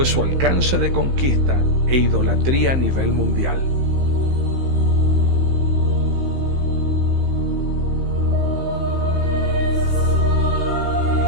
su alcance de conquista e idolatría a nivel mundial.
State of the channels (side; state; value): left; late; 15 ms